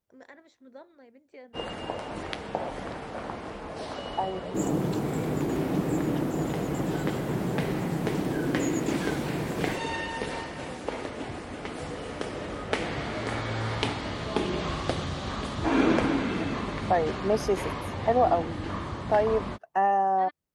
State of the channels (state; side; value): identical; both; correlation 1.00